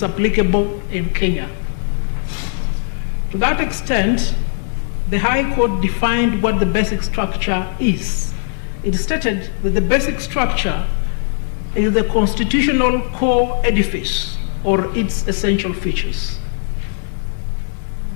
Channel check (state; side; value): silent; right; 67 dB below the other